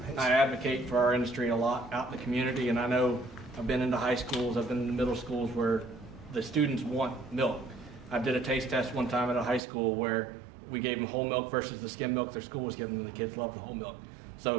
I advocate for our industry a lot out in the community, and I know I've been into high schools, I've been in the middle schools where the students want milk. I did a taste test one time at a high school where we gave them whole milk versus the skim milk their school was giving them. The kids love the whole milk.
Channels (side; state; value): left; drops out; at 9.6 s